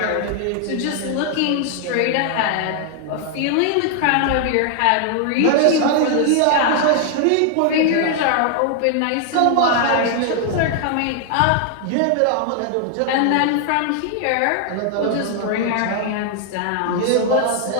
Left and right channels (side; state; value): both; different; correlation 0.00